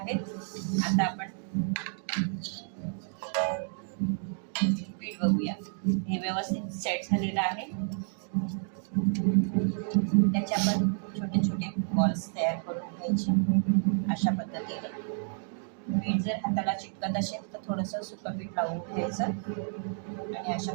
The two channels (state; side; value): silent; left; 55 dB below the other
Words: आता आपण पीठ बघूया, हे व्यवस्थित सेट झालेलं आहे। त्याचे आपण छोटे छोटे बॉल्स तयार करून घ्यायचे अशा पद्धतीने। पीठ जर हाताला चिटकत असेल तर थोडंसं सुकं पीठ लावून घ्यायचं आणि अशा